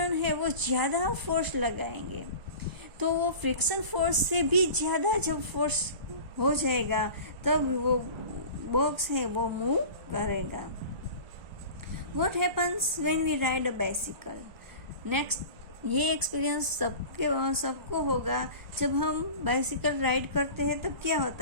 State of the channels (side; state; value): left; late; 1.0 ms